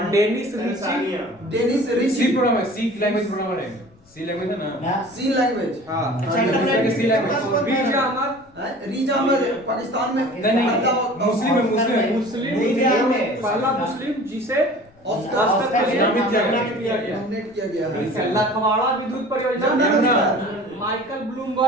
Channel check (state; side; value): noise; left; rumble, 29 dB below the sound